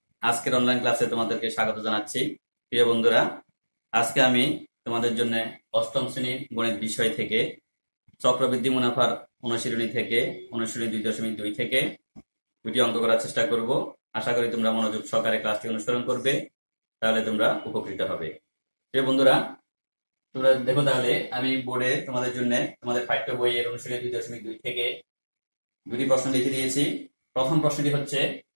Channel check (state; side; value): inverted; both; correlation -1.00